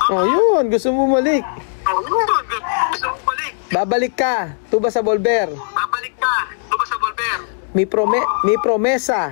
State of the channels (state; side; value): silent; right; digital silence